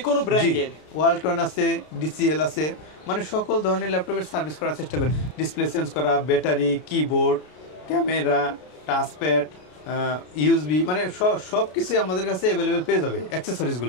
কোনো ব্র্যান্ডের ওয়ালটন আছে, ডিসিএল আছে, মানে সকল ধরনের ল্যাপটপের সার্ভিস করার চেষ্টা করি। ডিসপ্লে চেঞ্জ করা, battery, keyboard, camera, touchpad, USB, মানে সব কিছুই আমাদের কাছে অ্যাভেলেবেল পেয়ে যাবে।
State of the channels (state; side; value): late; right; 33 ms